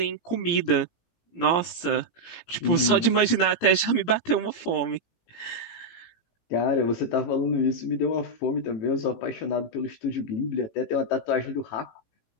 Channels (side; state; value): right; late; 17 ms